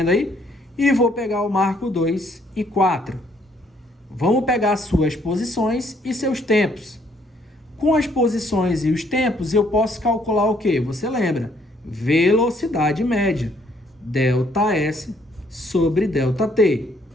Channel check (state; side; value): normal; both; correlation 0.67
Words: aí? E vou pegar o marco 2 e 4. Vamos pegar suas posições e seus tempos. Com as posições e os tempos, eu posso calcular o quê? Você lembra? Velocidade média. ΔS sobre ΔT.